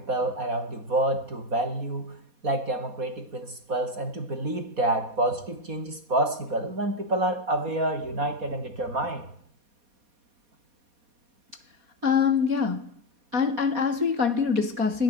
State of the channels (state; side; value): late; left; 4.2 ms